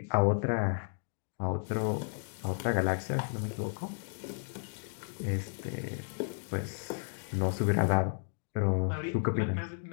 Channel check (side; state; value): right; silent; digital silence